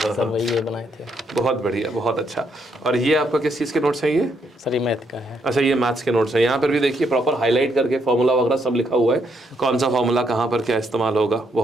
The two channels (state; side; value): normal; both; correlation 0.75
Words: सर वही ये बनाए थे। बहुत बढ़िया, बहुत अच्छा। और ये आपका किस चीज़ के नोट्स हैं ये? सर ये मैथ का है। अच्छा, ये मैथ्स के नोट्स हैं। यहाँ पर भी देखिए प्रॉपर हाईलाइट करके फॉर्मूला वगैरह सब लिखा हुआ है, कौन सा फॉर्मूला कहाँ पर क्या इस्तेमाल होगा।